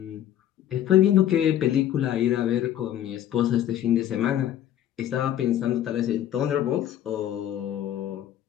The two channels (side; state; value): right; quieter; 11.3 dB